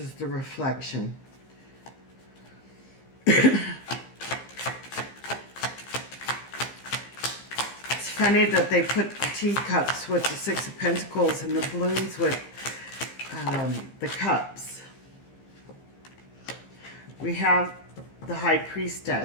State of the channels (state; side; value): late; right; 15 ms